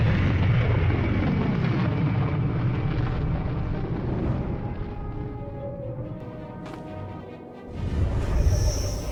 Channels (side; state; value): both; identical; correlation 1.00